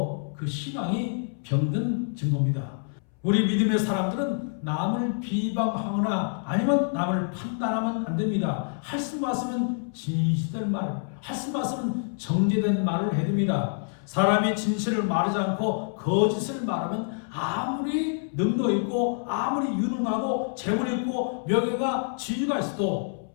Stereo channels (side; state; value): right; silent; 60 dB below the other